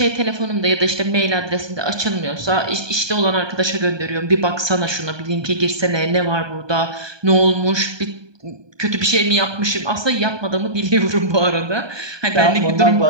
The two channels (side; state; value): left; late; 1.2 ms